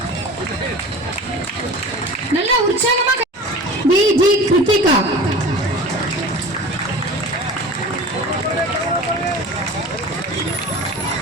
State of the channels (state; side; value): normal; both; correlation 0.37